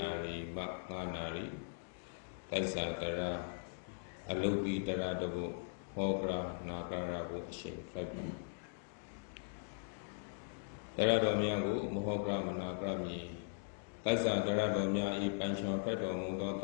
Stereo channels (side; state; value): right; silent; digital silence